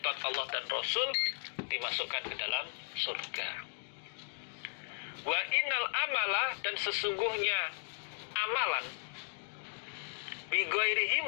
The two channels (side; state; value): right; silent; digital silence